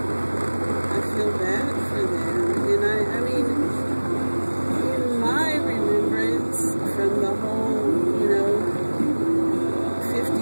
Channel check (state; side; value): inverted; both; correlation -1.00